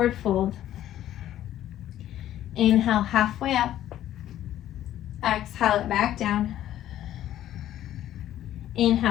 fold. Inhale halfway up. Exhale it back down.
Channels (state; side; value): quieter; right; 12.4 dB